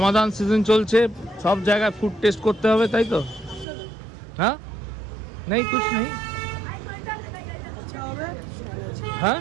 সিজন চলছে, সব জায়গায় ফুড টেস্ট করতে হবে, তাই তো? হ্যাঁ, নেই কুছ নেই। হ্যাঁ,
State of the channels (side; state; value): left; drops out; at 3.7 s